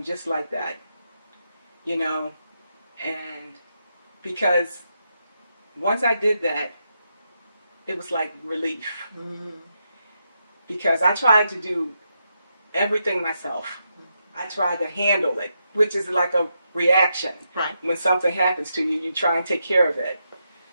just like that, and because once I did that, it was like relief. Mm-hmm. Because I tried to do everything myself. Mm-hmm. I tried to handle it, which is like a reaction. Right. When something happens to you, you try and take care of it.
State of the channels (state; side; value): inverted; both; correlation -0.84